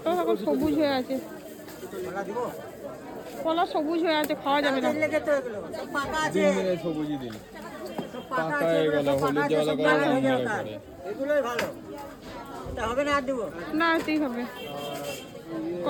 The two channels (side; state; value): both; identical; correlation 1.00